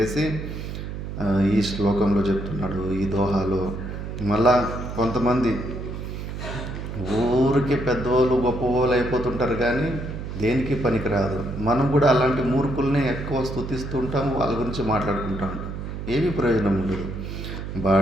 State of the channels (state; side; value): noise; right; hum, 7 dB below the sound